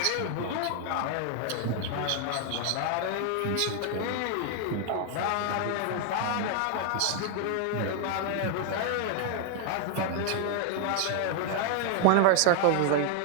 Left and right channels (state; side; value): different; both; correlation 0.00